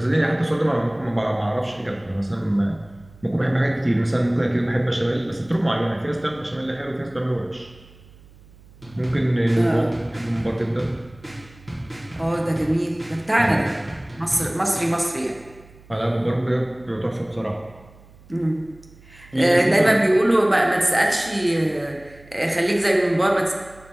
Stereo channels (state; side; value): noise; right; hum, 24 dB below the sound